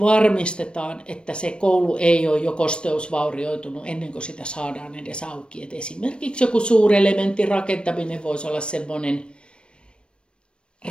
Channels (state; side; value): late; right; 0.056 ms